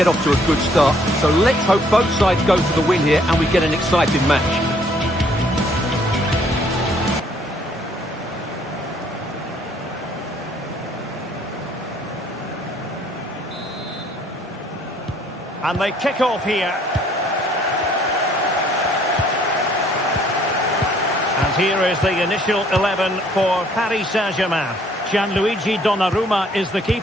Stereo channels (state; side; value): normal; both; correlation 0.63